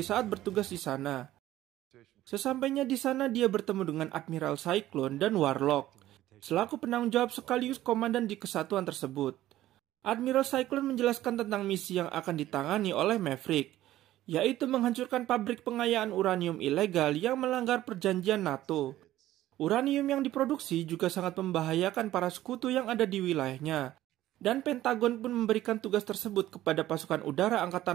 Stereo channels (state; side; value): quieter; left; 14.4 dB